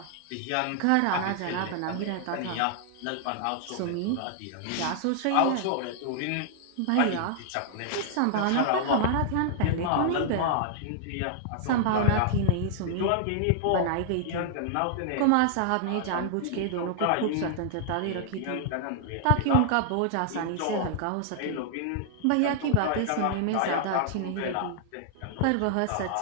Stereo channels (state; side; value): different; both; correlation -0.01